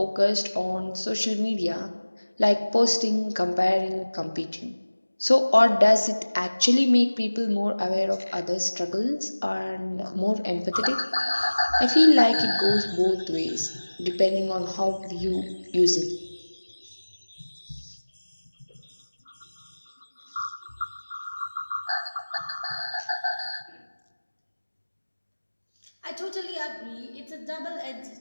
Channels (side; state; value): both; inverted; correlation -1.00